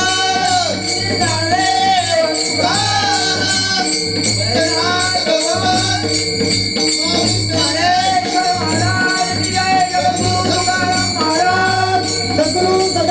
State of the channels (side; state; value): both; identical; correlation 1.00